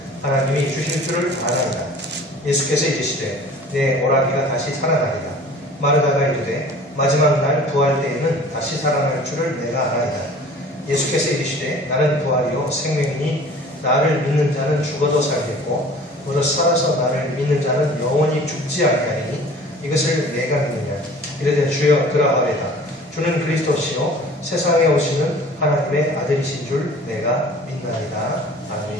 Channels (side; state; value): both; normal; correlation 0.46